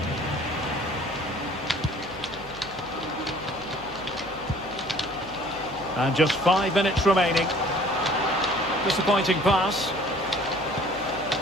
And just 5 minutes remaining. Disappointing pass.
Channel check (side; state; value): right; noise; hum, 19 dB below the sound